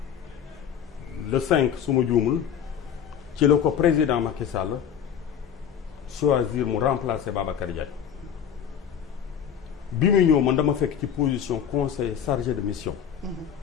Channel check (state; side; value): quieter; right; 8.4 dB